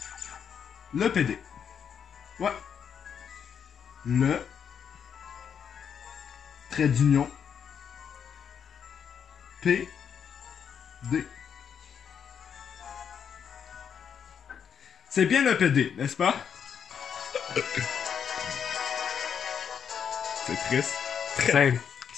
Le PD. Ouais. Le trait d'union PD. C'est bien le PD, n'est-ce pas? C'est triste.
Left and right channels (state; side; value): quieter; right; 7.6 dB